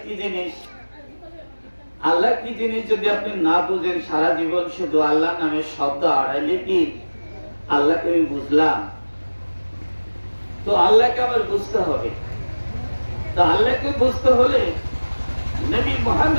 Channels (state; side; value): inverted; both; correlation -1.00